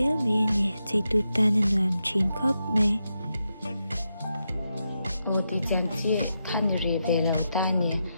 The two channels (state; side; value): inverted; both; correlation -0.86